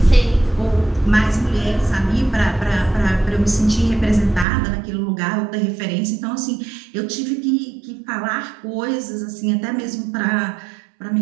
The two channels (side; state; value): left; drops out; at 4.5 s